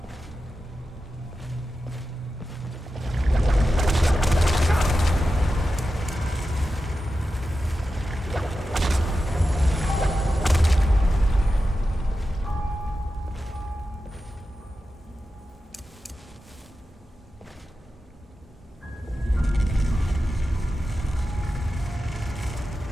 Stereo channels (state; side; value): normal; both; correlation 0.91